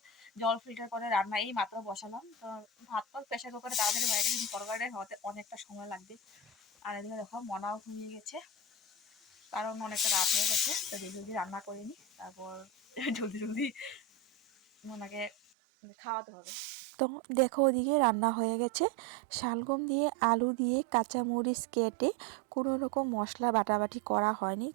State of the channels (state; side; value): drops out; left; at 15.4 s